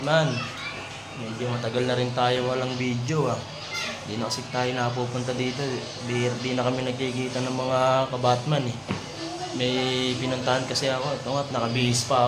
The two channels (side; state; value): both; identical; correlation 1.00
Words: Medyo matagal na rin tayo walang video Hindi na kasi tayo napupunta dito. Di na kami nagkikita ng mga kabatman May pinuntahan kasi ako. Ito nga, nakabihis pa